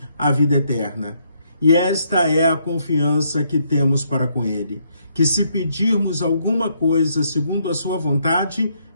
a vida eterna. E esta é a confiança que temos para com Ele, que se pedirmos alguma coisa segundo a sua vontade,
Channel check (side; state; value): both; inverted; correlation -0.73